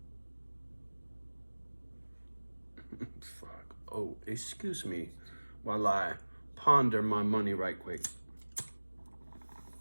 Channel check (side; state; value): both; inverted; correlation -1.00